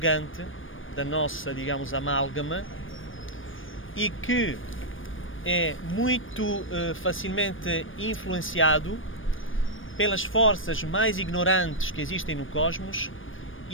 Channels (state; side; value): late; right; 0.58 ms